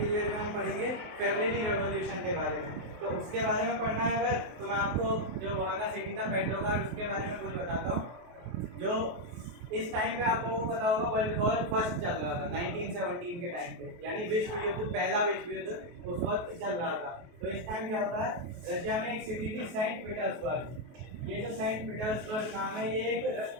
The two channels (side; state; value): left; late; 23 ms